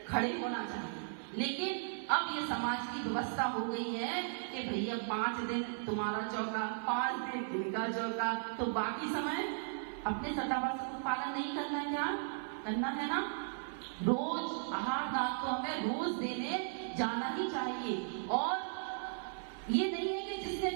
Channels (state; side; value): silent; left; 53 dB below the other